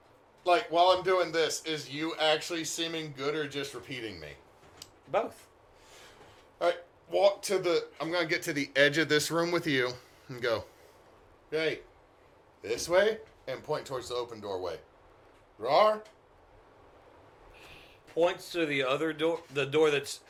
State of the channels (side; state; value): both; identical; correlation 1.00